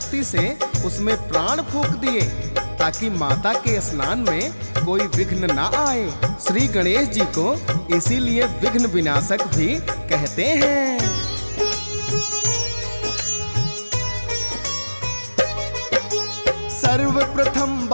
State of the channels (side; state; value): both; inverted; correlation -1.00